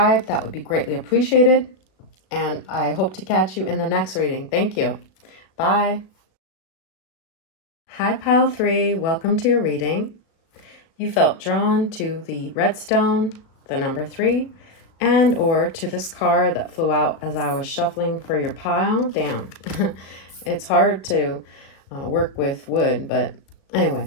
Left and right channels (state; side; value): late; right; 36 ms